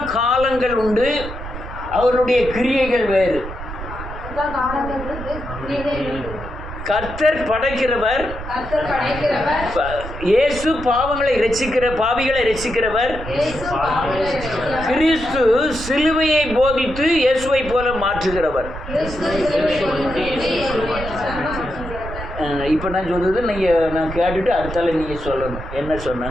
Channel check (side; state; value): right; noise; rumble, 10 dB below the sound